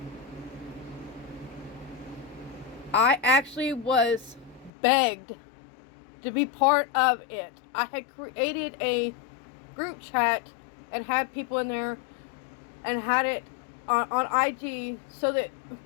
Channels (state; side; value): drops out; right; at 4.7 s